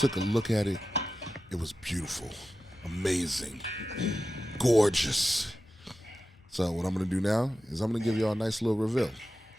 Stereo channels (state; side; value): normal; both; correlation 0.93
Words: a look at it. It was beautiful, amazing, gorgeous. So what I'm going to do now is I'm going to give y'all a nice little reveal.